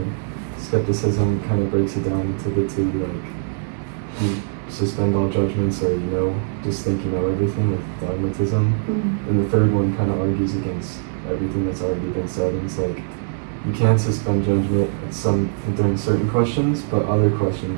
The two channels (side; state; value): left; silent; digital silence